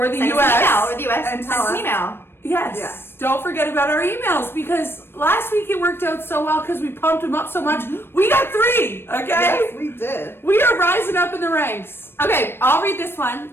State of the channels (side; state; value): right; late; 0.11 ms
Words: the US, and tell us. An email. Yes. Don't forget about our emails, because last week it worked out so well because we pumped them up so much. We got 3, okay? Yes, we did. We are rising up in the ranks. Okay, I'll read this one.